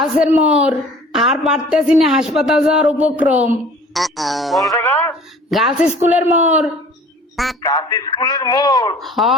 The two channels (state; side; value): normal; both; correlation 0.48